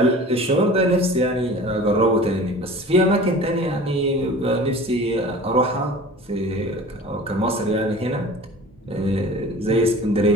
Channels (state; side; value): normal; both; correlation 0.41